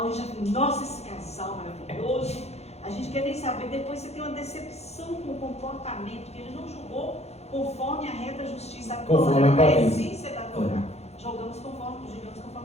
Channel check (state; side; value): late; right; 0.31 ms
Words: e já fala, nossa, esse casal maravilhoso. A gente quer nem saber, depois você tem uma decepção com o comportamento, que ele não julgou conforme a reta justiça, a Conforme a Torá, a aparência. essência da Torá. Julgamos